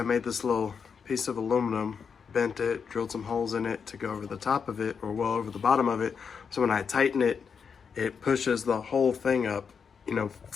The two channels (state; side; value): quieter; right; 6.3 dB